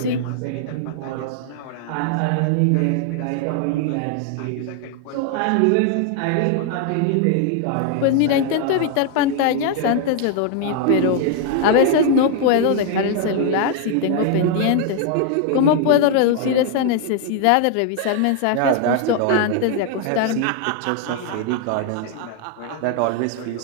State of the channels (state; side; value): different; both; correlation 0.00